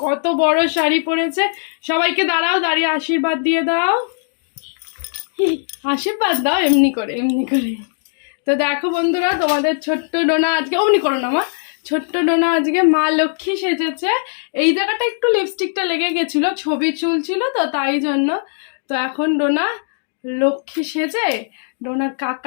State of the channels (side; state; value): right; silent; digital silence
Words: কত বড় শাড়ি পরেছে। সবাইকে দাঁড়াও, দাঁড়িয়ে আশীর্বাদ দিয়ে দাও। আশীর্বাদ দাও এমনি করে, এমনি করে। তো দেখো বন্ধুরা, তোমাদের ছোট্ট ডোনা আজকে অমনি করো না মা, ছোট্ট ডোনা আজকে মা লক্ষ্মী সেজেছে। এই জায়গাটা একটু লিপস্টিকটা লেগে গেছিল, ছবি চুল ছিল তো তাই জন্য। তো এখন ডোনা লক্ষ্মী সেজে ডোনার